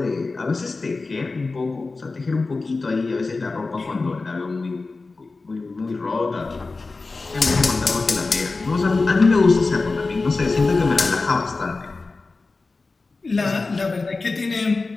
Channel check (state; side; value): quieter; right; 3.7 dB